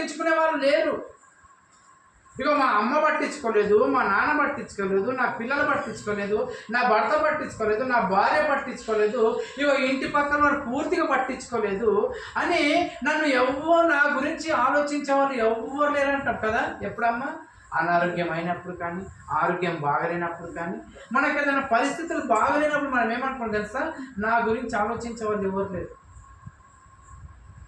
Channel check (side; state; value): both; identical; correlation 1.00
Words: వాళ్ళు లేరు. ఇక మా అమ్మ పట్టించుకోలేదు, మా నాన్న పట్టించుకోలేదు, నా పిల్లలు పట్టించుకోలేదు, నా భర్త పట్టించుకోలేదు, నా భార్య పట్టించుకోలేదు, ఇక ఇంటి పక్కన వారు పూర్తిగా పట్టించుకోలేదు అని నన్ను ఎవ్వరు, నా గురించి ఆలోచించే వాళ్ళు ఎవ్వరు లేరంటారు కదా. ఎప్పుడమ్మా? అనారోగ్యం అయినప్పుడు కానీ, ఆరోగ్యం బాగలేనప్పుడు కానీ, మనకు ఏదైనా పరిస్థితులు బాగలేనప్పుడు మనం ఏమనుకుంటాం తెలుసా? నా గురించి ఆలోచించే వాళ్ళు ఎవరు లేరు.